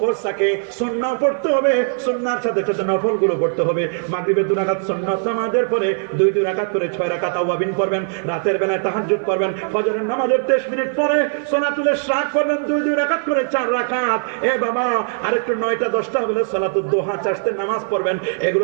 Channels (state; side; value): silent; left; 56 dB below the other